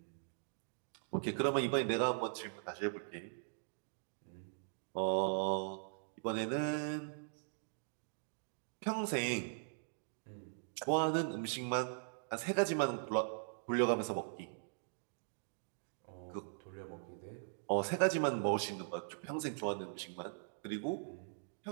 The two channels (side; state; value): left; silent; digital silence